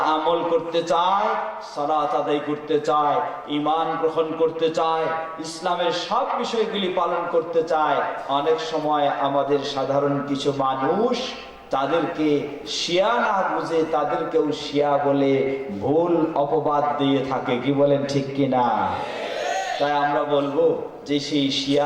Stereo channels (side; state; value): both; identical; correlation 1.00